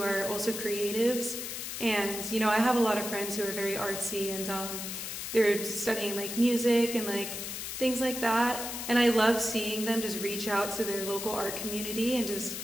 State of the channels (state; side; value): noise; left; hiss, 6 dB below the sound